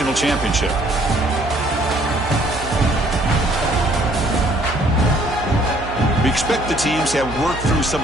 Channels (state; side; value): noise; right; hum, 11 dB below the sound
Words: championship. We expect the teams to have worked through some